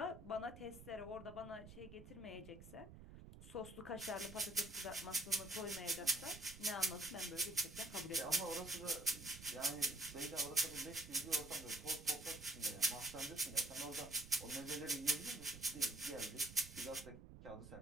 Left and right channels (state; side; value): noise; right; rumble, 15 dB below the sound